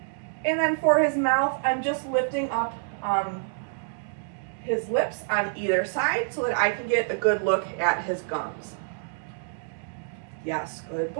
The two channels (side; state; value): left; silent; digital silence